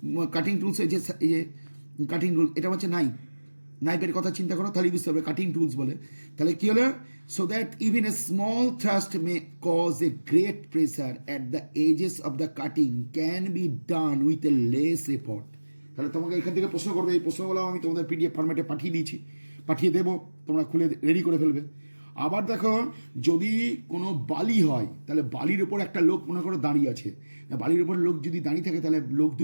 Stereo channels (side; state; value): both; inverted; correlation -1.00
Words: কাটিং টুলস এই যে কাটিং টুল এটা হচ্ছে নাইফের কথা চিন্তা করো তাহলে বুঝতে পারবে কাটিং টুলস বলে। তাহলে কি হলো, so that even a small thrust may cause a great pressure at the edges of the cutting can be done with a less effort. তাহলে তোমাকে এখান থেকে প্রশ্ন করবে, এই প্রশ্নগুলো আমি তোমাদের পিডিএফ ফরম্যাটে পাঠিয়ে দিয়েছি, পাঠিয়ে দেবো, তোমরা খুলে রেডি করে ফেলবে। আবার দেখো যদি কোনো বালি হয় তাহলে বালির ওপর একটা লোক মনে করো দাঁড়িয়ে আছে, বালির ওপর লোক যদি দাঁড়িয়ে থাকে তাহলে লোক